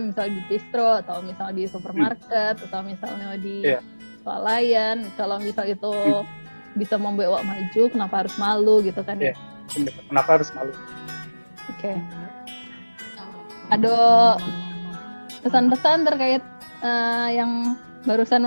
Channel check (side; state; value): both; inverted; correlation -1.00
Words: misalnya di distro atau misalnya di supermarket atau misalnya di swalayan, kalau misal itu bisa membuat awak maju, kenapa harus malu gitu kan ya? Kenapa harus malu? Oke. Ada pesan-pesan terkait yang